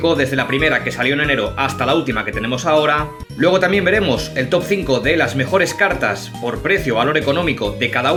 desde la primera que salió en enero hasta la última que tenemos ahora. Luego también veremos el top 5 de las mejores cartas por precio o valor económico de cada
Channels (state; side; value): identical; both; correlation 1.00